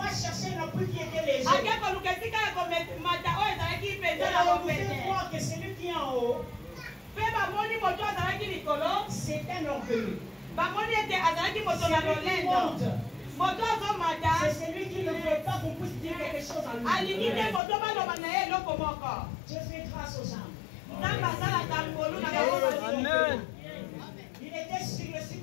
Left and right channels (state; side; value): drops out; right; at 17.6 s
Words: chercher un appui qui était léger. Vous voir que celui qui est en haut, c'est un orgueilleux. C'est celui qui ne veut pas qu'on puisse dire quelque chose à lui. Dieu fait grâce aux âmes. Amen. Il était sur le